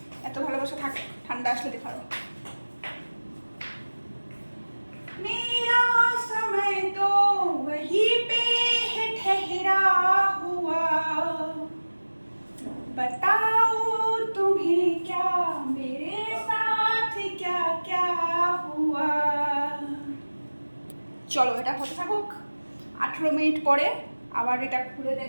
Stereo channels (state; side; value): inverted; both; correlation -1.00